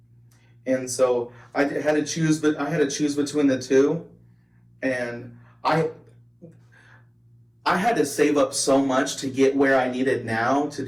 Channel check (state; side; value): identical; both; correlation 1.00